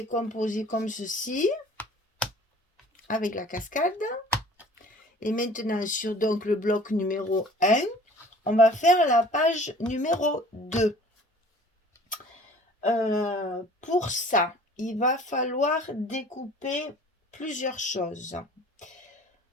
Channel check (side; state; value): both; normal; correlation 0.49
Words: comme ceci, avec la cascade. Et maintenant, sur donc le bloc numéro 1, on va faire la page numéro 2. Pour ça, il va falloir découper plusieurs choses.